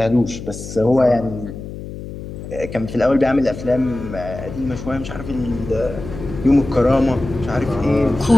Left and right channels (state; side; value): noise; left; hum, 10 dB below the sound